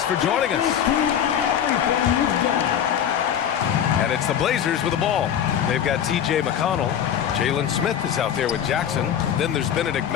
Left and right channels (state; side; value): quieter; right; 9.2 dB